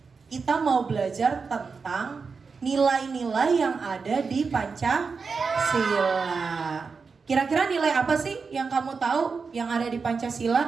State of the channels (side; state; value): left; quieter; 5.0 dB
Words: kita mau belajar tentang nilai-nilai yang ada di Pancasila. Kira-kira nilai apa sih yang kamu tahu yang ada di